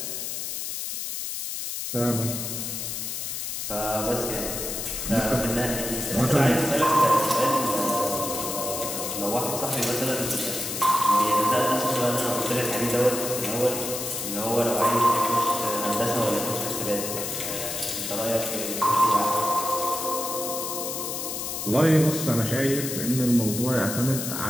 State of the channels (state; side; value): noise; left; hiss, 4 dB below the sound